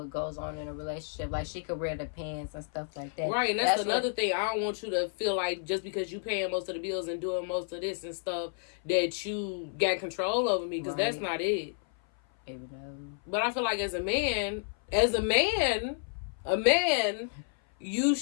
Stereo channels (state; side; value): silent; right; 55 dB below the other